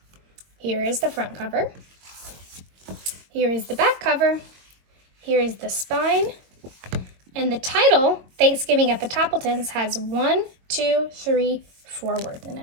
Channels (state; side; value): late; left; 22 ms